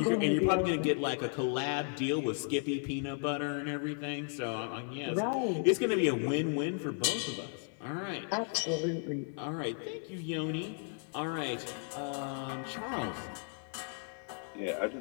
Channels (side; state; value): right; silent; 55 dB below the other